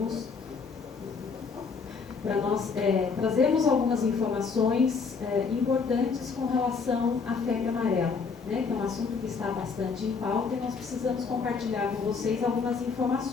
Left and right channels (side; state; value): right; quieter; 5.2 dB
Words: para nós trazermos algumas informações importantes com relação à febre amarela, né, que é um assunto que está bastante em pauta e nós precisamos compartilhar com vocês algumas